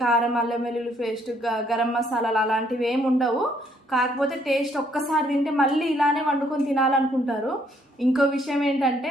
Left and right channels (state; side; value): normal; both; correlation 0.68